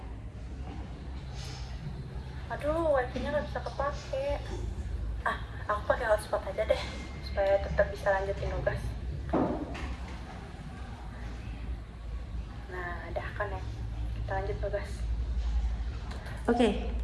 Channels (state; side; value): identical; both; correlation 1.00